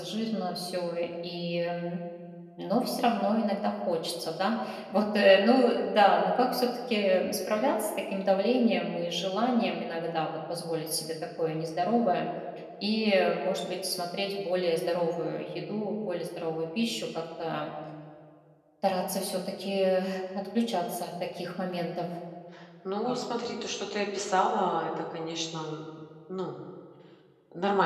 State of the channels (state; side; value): identical; both; correlation 1.00